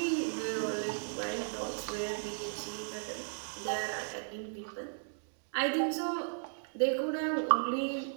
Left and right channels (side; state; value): left; silent; digital silence